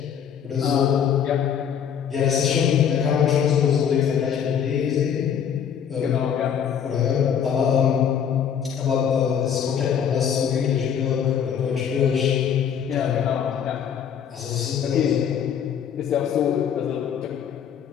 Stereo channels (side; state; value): right; quieter; 8.2 dB